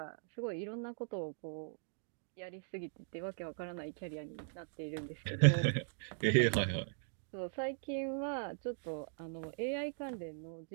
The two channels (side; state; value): left; silent; digital silence